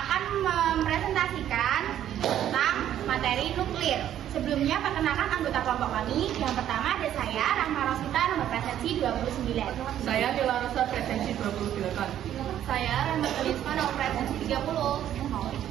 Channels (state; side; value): quieter; left; 11.1 dB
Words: mempresentasikan tentang materi nuklir. Sebelumnya perkenalkan anggota kelompok kami. Yang pertama ada saya, Rahma Rosita, nomor presensi 29. Saya Nila Rosa, presensi 28. Saya Rahmat Risma, nomor presensi 30.